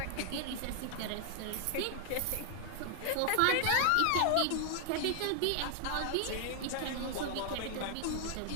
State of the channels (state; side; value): different; both; correlation 0.00